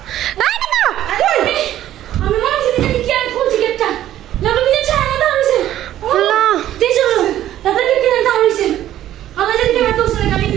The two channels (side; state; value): left; quieter; 12.6 dB